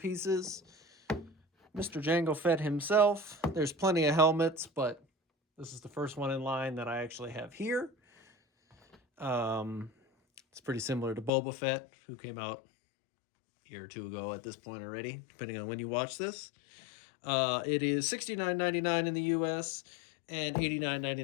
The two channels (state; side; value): drops out; right; at 11.3 s